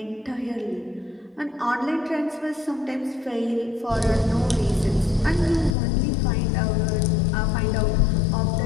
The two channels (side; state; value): right; drops out; at 5.8 s